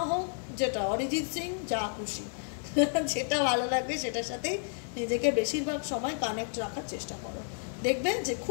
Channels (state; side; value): silent; right; digital silence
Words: হোক, যেটা অরিজিৎ সিং, যা খুশি, যেটা ভালো লাগবে সেটার সাথেই নিজেকে বেশিরভাগ সময় কানেক্ট রাখার চেষ্টা করো। দেখবে যে